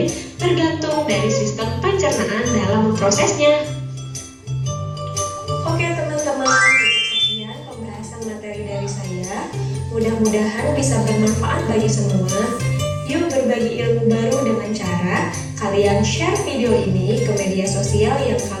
tergantung dari sistem pencernaan dalam memprosesnya. Oke teman-teman, sekian pembahasan materi dari saya. Mudah-mudahan bisa bermanfaat bagi semua. Yuk berbagi ilmu baru dengan cara kalian share video ini ke media sosial yang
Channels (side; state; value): both; identical; correlation 1.00